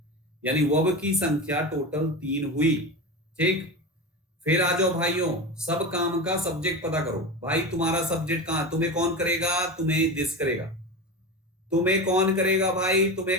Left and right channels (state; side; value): normal; both; correlation 0.24